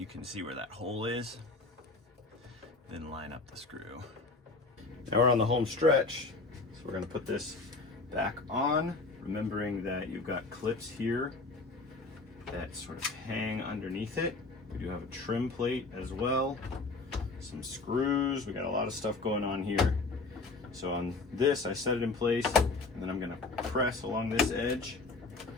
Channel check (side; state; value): right; quieter; 3.6 dB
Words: can see where that hole is. Then line up the screw. Now we're on the home stretch. So we're gonna put this back on, remembering that you've got clips here that sort of hang underneath it. We do have a trim plate as well, some screws. We got a lot of stuff going on here. So on this, I set it in place, and then I'm gonna press along this edge,